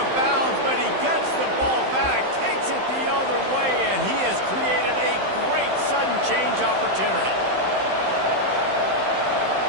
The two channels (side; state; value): left; late; 15 ms